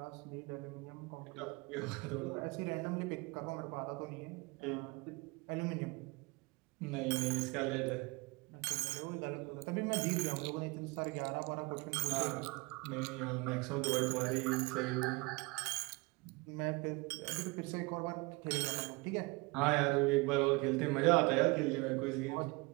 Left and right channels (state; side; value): quieter; left; 26.1 dB